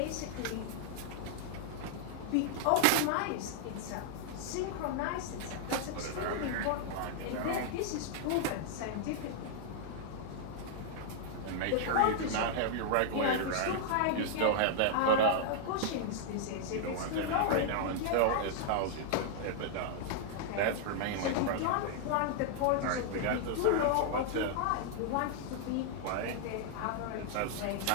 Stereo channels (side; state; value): both; different; correlation -0.01